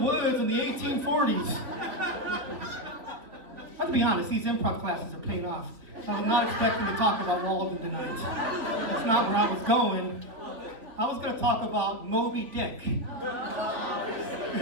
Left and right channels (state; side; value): late; left; 3.6 ms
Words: in the 1840s. Let's be honest, these improv classes are paying off. I'm not expecting to talk about Walden tonight. That's not where I was going. I was going to talk about Moby Dick.